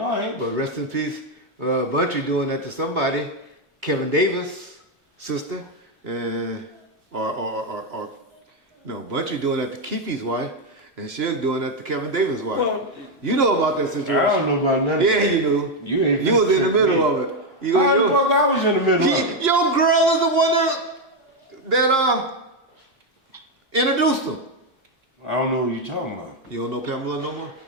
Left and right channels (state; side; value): normal; both; correlation 0.05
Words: I ain't. But rest in peace, Buntry doing that to somebody. Kevin Davis' sister, or no, Buntry doing that to Keefe's wife, and Suge doing that to Kevin Davis' wife. Well, you know about that situation? I don't know about nothing. Yeah, you do. You was in the middle of it. You I was in the middle of it. Your girl is the one that introduced him. I don't know what you're talking about. You don't know Pamela no more?